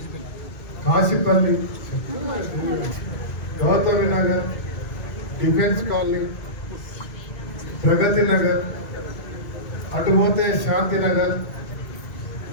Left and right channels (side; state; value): right; late; 2.2 ms